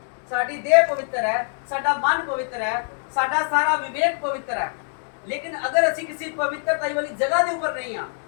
ਸਾਡੀ ਦੇਹ ਪਵਿੱਤਰ ਹੈ, ਸਾਡਾ ਮਨ ਪਵਿੱਤਰ ਹੈ, ਸਾਡਾ ਸਾਰਾ ਵਿਵੇਕ ਪਵਿੱਤਰ ਹੈ, ਲੇਕਿਨ ਅਗਰ ਅਸੀਂ ਕਿਸੇ ਪਵਿੱਤਰਤਾਈ ਵਾਲੀ ਜਗ੍ਹਾ ਦੇ ਉੱਪਰ ਨਹੀਂ ਹਾਂ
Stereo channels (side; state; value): right; silent; 63 dB below the other